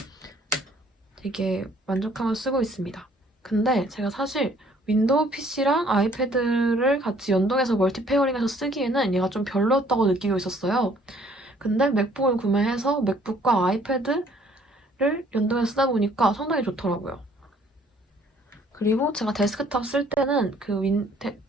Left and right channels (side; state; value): both; normal; correlation 0.60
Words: 되게 만족하면서 쓰고 있습니다. 근데 제가 사실 윈도우 PC랑 아이패드를 같이 연동해서 멀티 페어링해서 쓰기에는 얘가 좀 별로였다고 느끼고 있었어요. 근데 맥북을 구매해서 맥북과 아이패드를 연동해서 쓰다 보니까 상당히 좋더라고요. 그리고 제가 데스크탑 쓸 때는